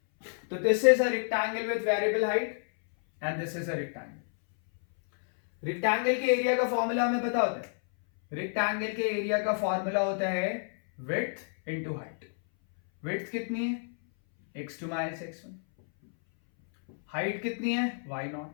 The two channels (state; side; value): silent; right; 58 dB below the other